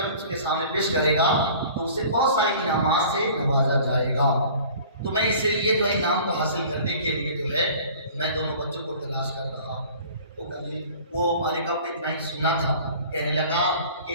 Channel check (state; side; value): inverted; both; correlation -0.46